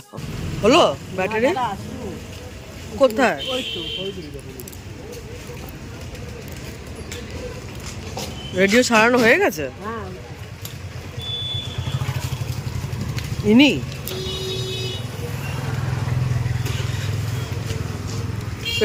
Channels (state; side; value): identical; both; correlation 1.00